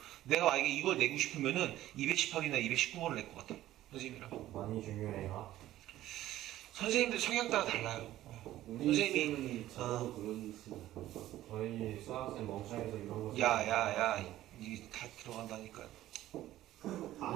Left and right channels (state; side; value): quieter; left; 14.3 dB